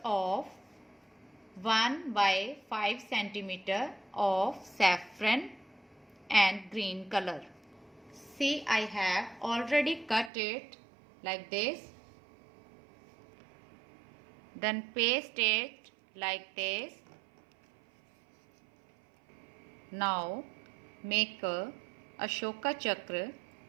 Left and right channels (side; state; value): left; drops out; at 10.3 s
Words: of 1 by 5 centimeter of saffron and green color. See, I have already cut it like this. Then paste it like this. Now make a Ashoka Chakra